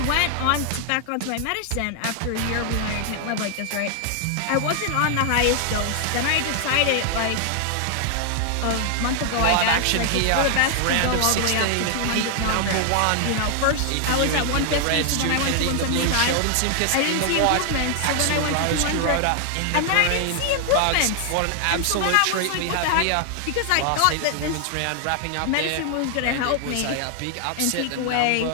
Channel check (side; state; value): both; different; correlation 0.00